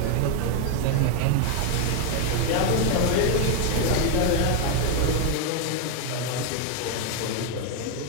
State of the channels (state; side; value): different; both; correlation 0.01